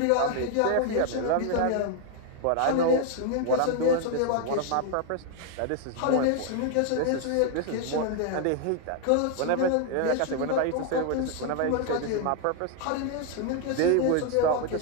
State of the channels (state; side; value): different; both; correlation 0.00